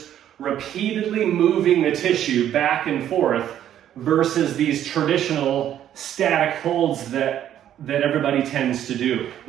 repeatedly moving the tissue back and forth versus these traditional static holds that everybody tends to do,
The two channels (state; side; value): quieter; left; 10.9 dB